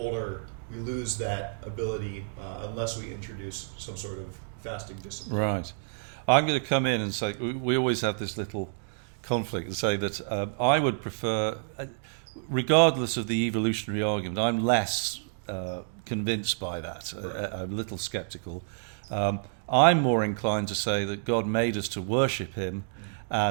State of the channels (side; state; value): left; silent; digital silence